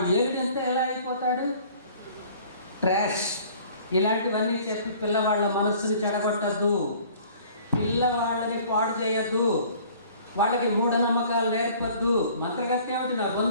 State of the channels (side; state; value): both; inverted; correlation -0.52